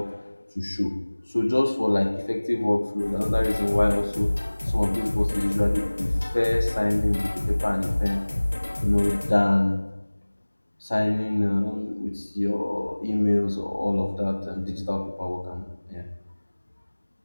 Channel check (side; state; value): both; inverted; correlation -1.00